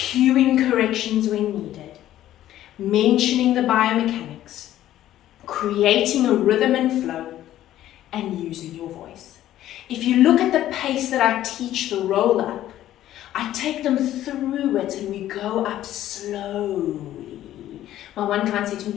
corrections when needed, mentioning the biomechanics, creating a rhythm and flow, and using your voice. If you look at the pace that I teach the roll up, I take them through it and we go up slowly. My one client said to me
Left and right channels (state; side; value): quieter; right; 13.0 dB